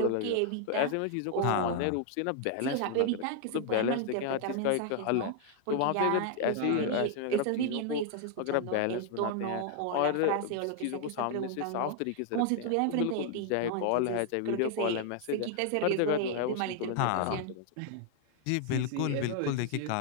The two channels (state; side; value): different; both; correlation 0.00